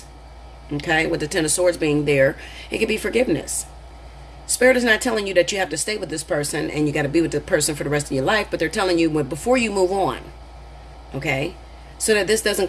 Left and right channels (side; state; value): both; identical; correlation 1.00